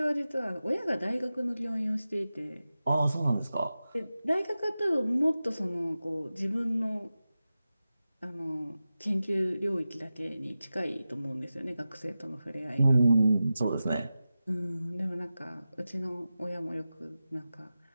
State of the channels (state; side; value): inverted; both; correlation -0.94